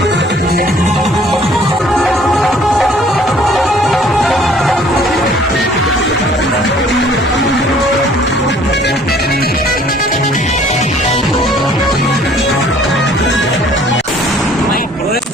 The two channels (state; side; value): normal; both; correlation 0.57